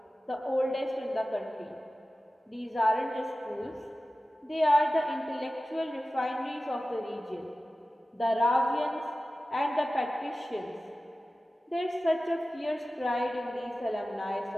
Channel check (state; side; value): normal; both; correlation 0.95